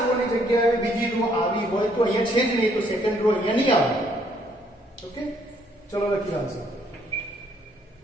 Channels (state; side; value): normal; both; correlation 0.67